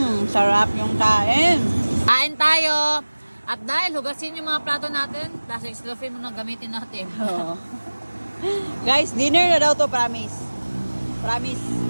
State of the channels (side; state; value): both; inverted; correlation -1.00